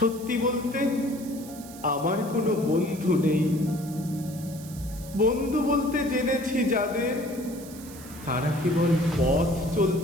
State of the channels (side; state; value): right; noise; hiss, 17 dB below the sound